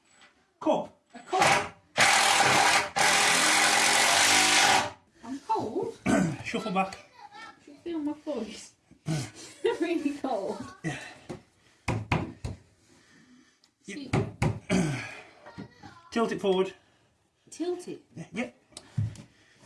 Cup. A cup? I'm cold. Shuffle back. I should feel my voice. Really cold. Yeah. See, Tilt it forward. tilt it. Yeah.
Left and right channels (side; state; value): both; identical; correlation 1.00